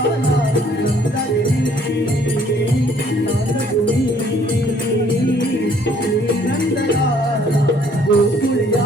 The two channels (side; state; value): both; normal; correlation 0.61